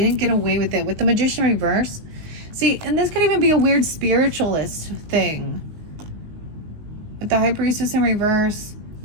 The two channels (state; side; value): late; left; 19 ms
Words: get away with it. With the Magician reverse, see, and this could even be a weird spiritualist thing. With the High Priestess in reverse,